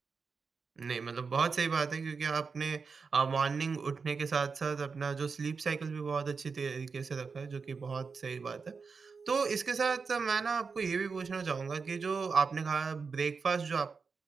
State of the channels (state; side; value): quieter; left; 5.1 dB